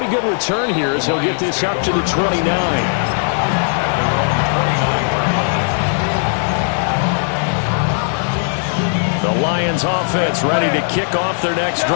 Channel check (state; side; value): silent; right; 63 dB below the other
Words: good return here as he'll get this up to the 29. The Lions offense ready to kick off their next